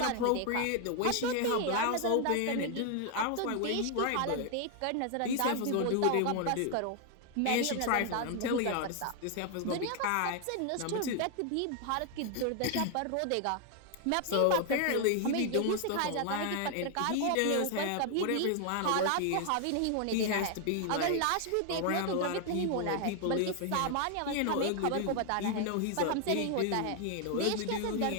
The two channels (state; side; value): different; both; correlation 0.00